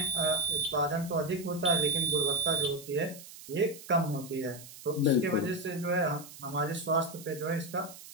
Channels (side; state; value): right; noise; hiss, 16 dB below the sound